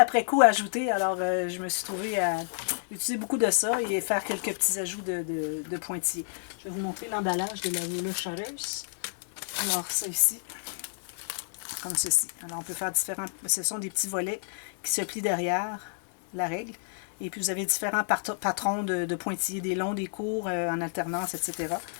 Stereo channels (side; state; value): right; silent; 58 dB below the other